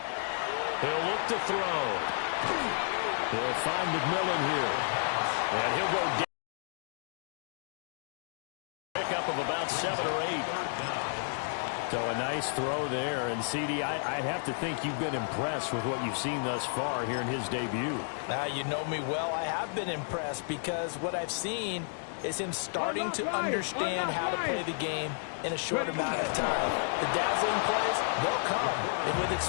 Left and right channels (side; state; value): right; silent; digital silence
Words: He'll look to throw. He'll find McMillan here. And he'll go down. Pickup of about 7 or 8. So a nice throw there. And, CD, I'd have to think you've been impressed with what you've seen thus far here in his debut. Now, you know me well. I have been impressed because what I've seen is him starting to understand how to play the game in a short amount of time. The dazzling plays, they'll come and with